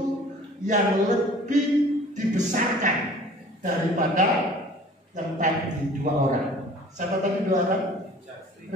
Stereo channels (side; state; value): both; normal; correlation 0.48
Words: yang lebih dibesarkan daripada yang tadi 2 orang. Siapa tadi 2 orang?